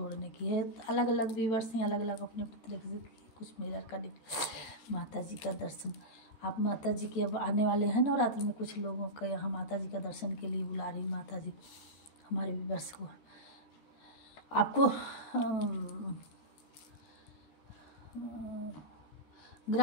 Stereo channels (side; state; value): right; late; 14 ms